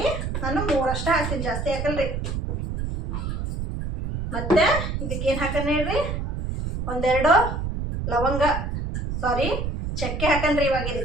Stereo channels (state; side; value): noise; right; rumble, 3 dB below the sound